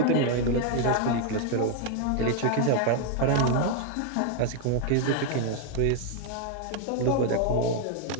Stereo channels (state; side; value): different; both; correlation 0.01